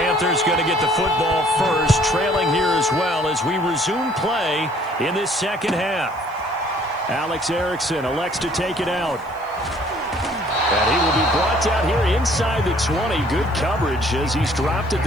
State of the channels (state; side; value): noise; right; hiss, 28 dB below the sound